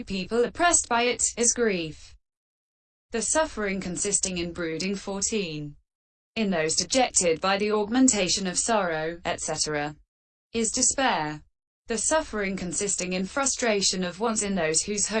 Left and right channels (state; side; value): identical; both; correlation 1.00